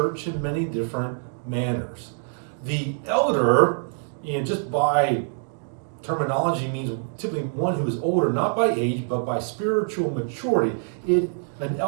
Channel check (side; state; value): left; silent; digital silence